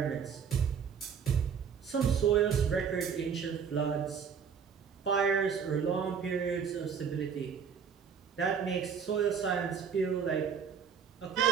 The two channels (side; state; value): left; quieter; 6.9 dB